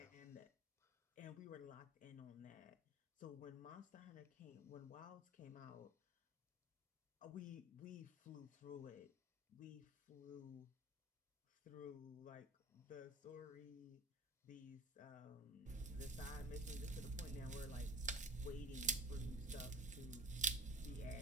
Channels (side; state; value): both; normal; correlation 0.36